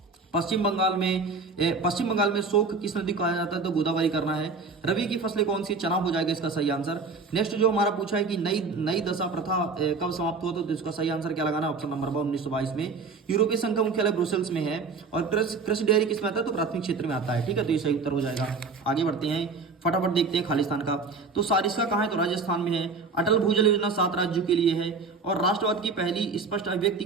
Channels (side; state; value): left; quieter; 4.4 dB